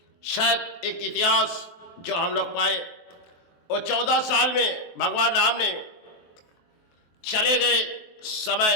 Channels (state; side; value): late; right; 23 ms